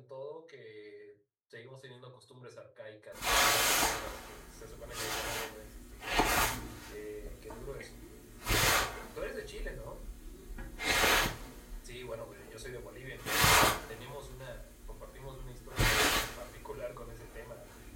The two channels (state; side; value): identical; both; correlation 1.00